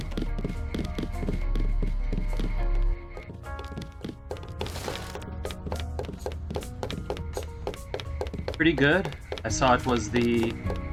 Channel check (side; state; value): both; identical; correlation 1.00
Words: Pretty good. I saw it was an